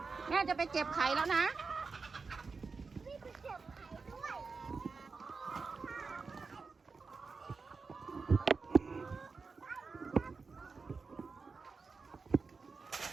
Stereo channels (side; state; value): left; quieter; 4.6 dB